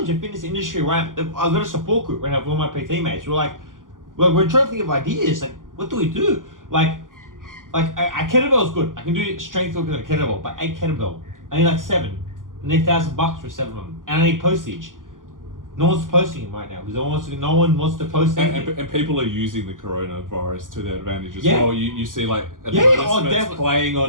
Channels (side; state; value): left; late; 0.89 ms